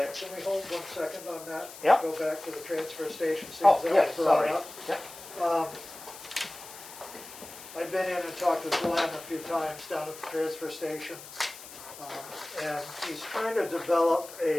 we hold 1 second on that? Yep. Go back to the transfer station, since Oh, that yeah, was brought sorry. up. Yep. I've been in and talked to Glenn a few times down at the transfer station, and he's trying to develop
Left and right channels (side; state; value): left; noise; hiss, 15 dB below the sound